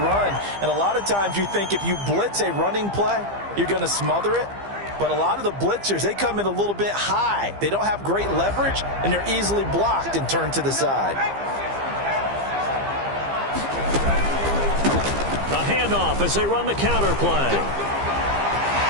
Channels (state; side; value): late; left; 15 ms